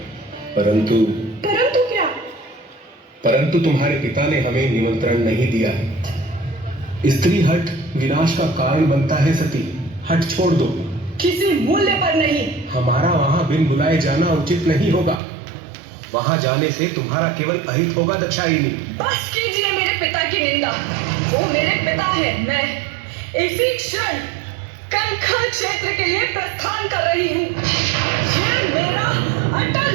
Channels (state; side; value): drops out; left; at 15.2 s